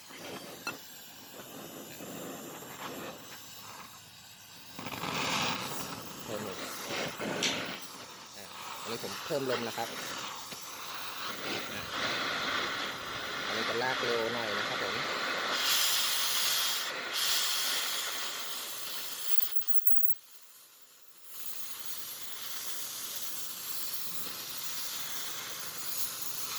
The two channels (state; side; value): identical; both; correlation 1.00